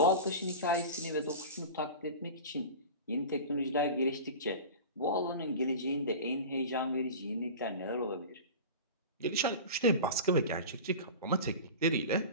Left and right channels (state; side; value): inverted; both; correlation -0.32